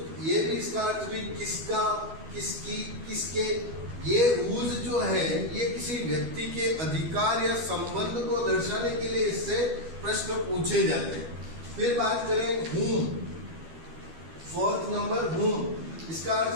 ये भी इसका अर्थ भी किसका, किसकी, किसके। ये हुज जो है ये किसी व्यक्ति के अधिकार या संबंध को दर्शाने के लिए इससे प्रश्न पूछे जाते हैं। फिर बात करें whom, फोर्थ नंबर whom, इसका अर्थ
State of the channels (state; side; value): late; left; 12 ms